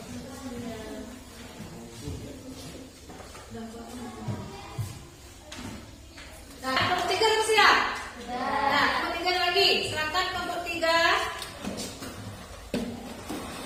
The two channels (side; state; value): both; identical; correlation 1.00